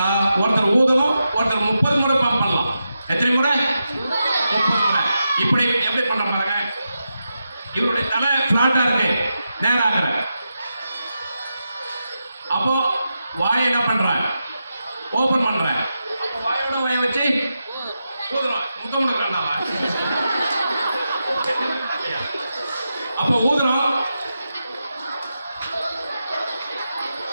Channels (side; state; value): both; inverted; correlation -0.88